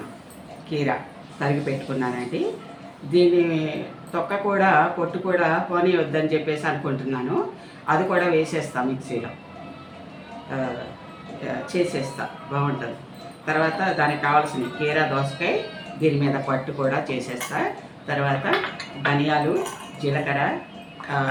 కీరా తరిగి పెట్టుకున్నానండి. దీని తొక్క కూడా పొట్టు కూడా పోనీ వద్దని చెప్పేసి అనుకుంటున్నాను. అది కూడా వేసేస్తాను, మిక్సీలో చేసేస్తా, బాగుంటుంది. తర్వాత దానికి కావాల్సిన కీరా దోసకాయ, దీని మీద పట్టు కూడా చేసేస్తా. తర్వాత ధనియాలు, జీలకర్ర,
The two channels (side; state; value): both; identical; correlation 1.00